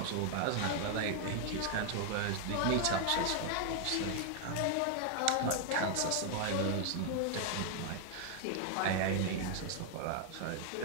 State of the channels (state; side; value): different; both; correlation 0.00